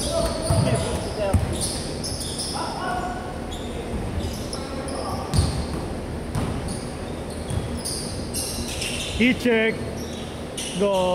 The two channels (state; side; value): identical; both; correlation 1.00